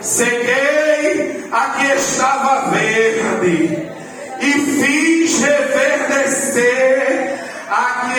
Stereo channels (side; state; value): both; identical; correlation 1.00